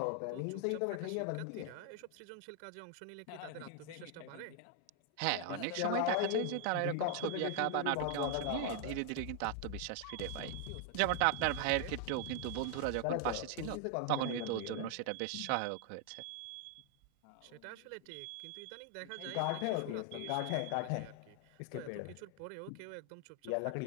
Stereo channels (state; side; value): different; both; correlation 0.00